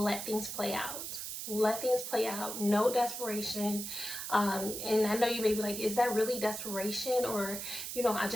things play out. Let things play out. No desperation. And I know you may be like, is that really desperation? Or, I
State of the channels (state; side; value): noise; right; hiss, 6 dB below the sound